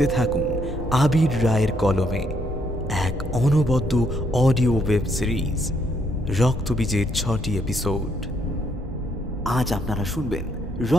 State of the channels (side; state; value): right; noise; hum, 13 dB below the sound